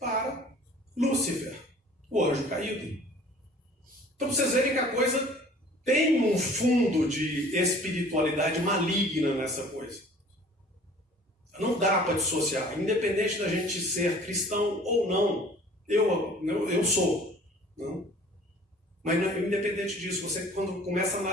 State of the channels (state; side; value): normal; both; correlation 0.50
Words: Lúcifer, o anjo caído. Então vocês verem que a coisa tem um fundo de espiritualidade maligna nessa coisa. Não dá para dissociar, independente da gente ser cristão ou não. Eu sou. Não? Mas independente disso, você quando começa a